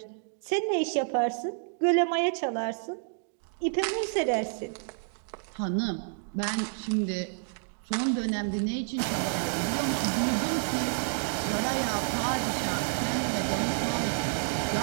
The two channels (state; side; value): silent; left; digital silence